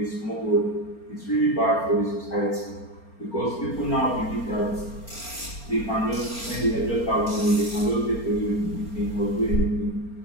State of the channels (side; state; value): right; late; 4.3 ms